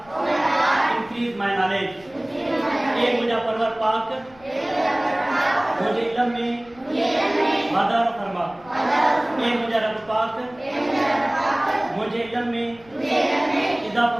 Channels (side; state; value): left; noise; rumble, 26 dB below the sound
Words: increase my knowledge. ए मुझा परवर पाक मुझे इल्म में मदद फरमा, ए मुझा रब पाक मुझे इल्म में इजाफा